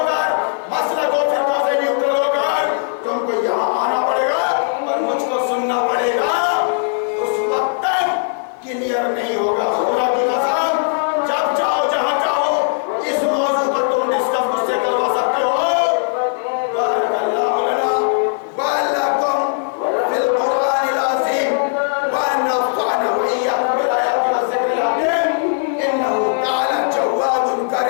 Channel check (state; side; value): silent; right; digital silence